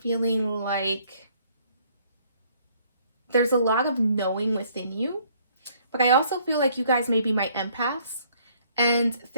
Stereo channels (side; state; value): both; inverted; correlation -0.63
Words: like there's a lot of knowing within you, but I also feel like you guys may be my empaths, and